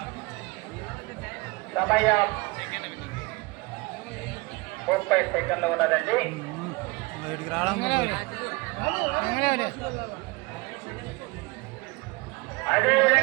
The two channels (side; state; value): left; quieter; 24.7 dB